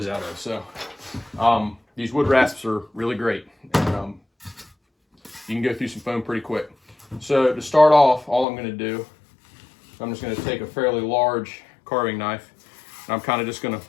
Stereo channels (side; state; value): right; drops out; at 8.5 s